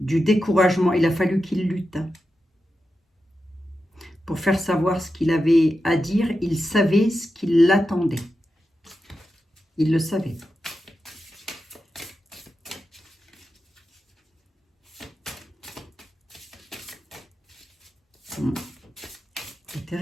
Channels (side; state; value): both; normal; correlation 0.90